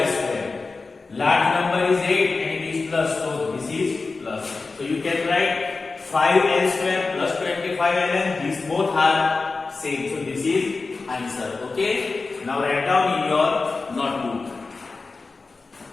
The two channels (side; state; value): right; quieter; 4.0 dB